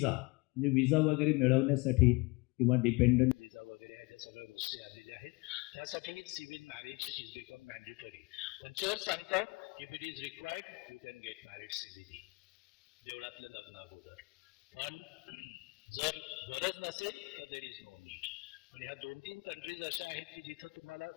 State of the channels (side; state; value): right; quieter; 26.5 dB